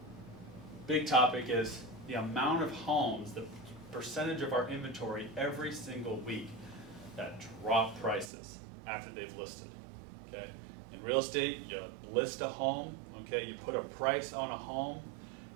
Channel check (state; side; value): drops out; left; at 8.3 s